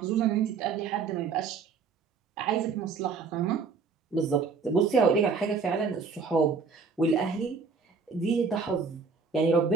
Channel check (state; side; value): quieter; left; 5.1 dB